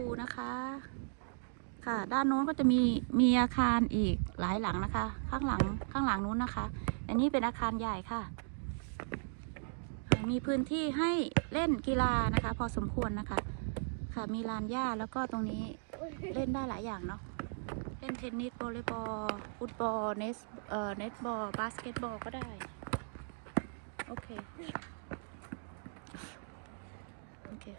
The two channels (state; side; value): silent; left; digital silence